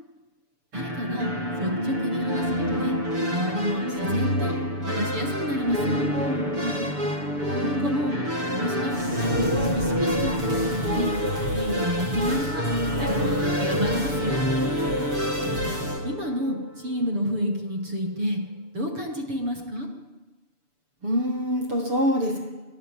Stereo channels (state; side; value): late; left; 6.9 ms